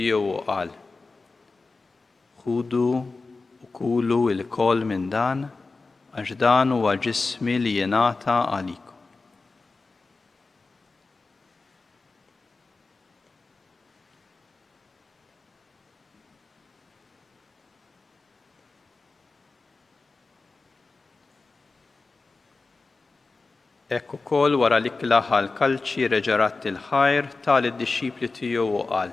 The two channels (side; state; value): right; quieter; 3.8 dB